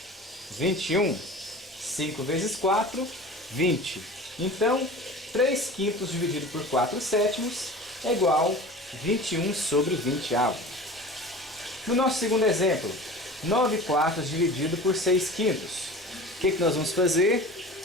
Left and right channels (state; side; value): normal; both; correlation 0.37